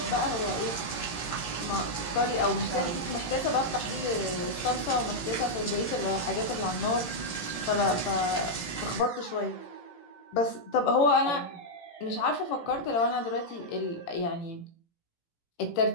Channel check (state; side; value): late; right; 18 ms